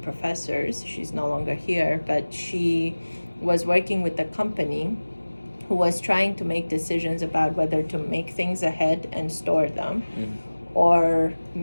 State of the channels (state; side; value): inverted; both; correlation -1.00